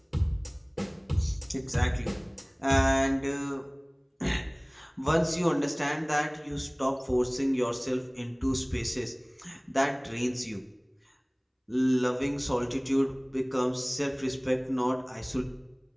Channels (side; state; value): both; identical; correlation 1.00